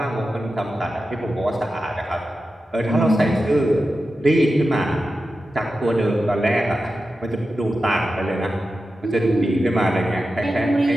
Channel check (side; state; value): both; normal; correlation 0.92